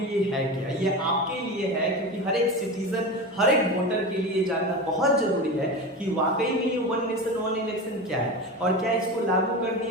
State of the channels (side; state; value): both; normal; correlation 0.26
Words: ये है क्या? ये आपके लिए है, क्योंकि हर एक सिटीजन, हर एक वोटर के लिए जानना बहुत जरूरी है कि वाकई में ये वन नेशन वन इलेक्शन क्या है और क्या इसको लागू कर